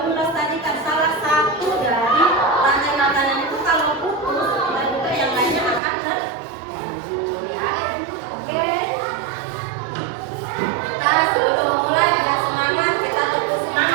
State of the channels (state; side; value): drops out; left; at 5.8 s